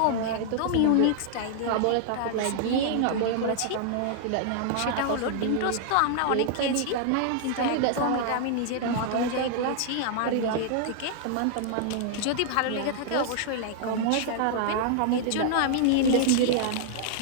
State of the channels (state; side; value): different; both; correlation -0.01